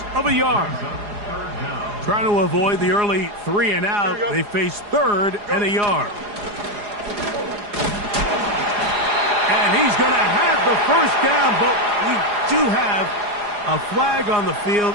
of a yard. Trying to avoid the early 3 and out. They face third and a yard. And he's going to have the first down, but we do have a flag on the field,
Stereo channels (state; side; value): late; left; 4.8 ms